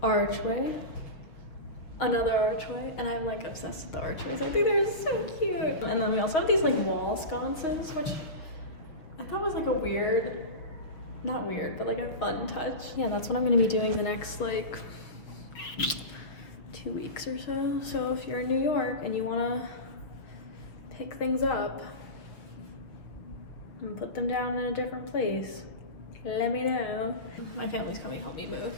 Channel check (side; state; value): right; late; 6.2 ms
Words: archway, another archway, and I'm like obsessed with the archways. I think they're so cute. And then we also have these like wall sconces, which I thought was like a weird, not weird, but like a fun touch. Yeah, that's what I'm gonna be doing the next like 2 weeks or so. So if you're in New York and you wanna pick things up and put them down in a different place, let me know. My family's coming to help me move,